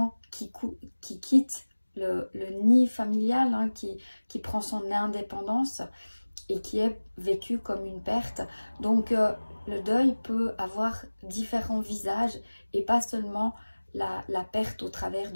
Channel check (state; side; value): inverted; both; correlation -1.00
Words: qui quitte le nid familial, qui prend son indépendance et qui est vécu comme une perte. Donc le deuil peut avoir différents visages et pas seulement la perte au travers